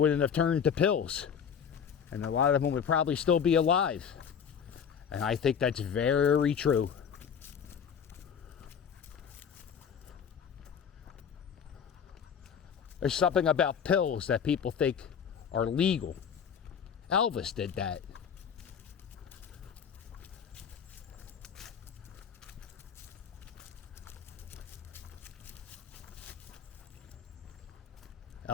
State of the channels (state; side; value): quieter; right; 7.4 dB